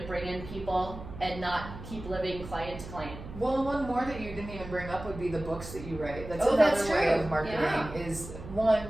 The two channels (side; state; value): right; noise; hum, 12 dB below the sound